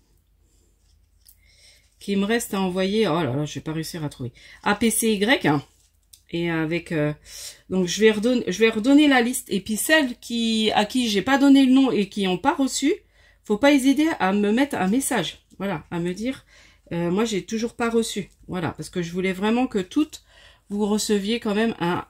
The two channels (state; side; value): identical; both; correlation 1.00